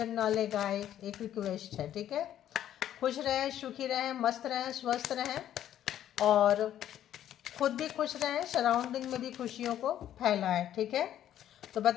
ना ले गाए, एक रिक्वेस्ट है। ठीक है, खुश रहें, सुखी रहें, मस्त रहें, स्वस्थ रहें और खुद भी खुश रहें, सराउंडिंग में भी खुशियों को फैलाएं। ठीक है, तो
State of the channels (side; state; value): right; quieter; 11.3 dB